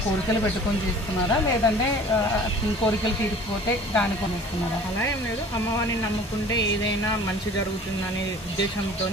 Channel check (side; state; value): both; normal; correlation 0.46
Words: కోరికలు పెట్టుకొని చేస్తున్నారా, లేదంటే కోరికలు తీరిపోతే దాని కొనిస్తున్నారా? అలా ఏం లేదు, అమ్మవారిని నమ్ముకుంటే ఏదైనా మంచి జరుగుతుందనే ఉద్దేశంతో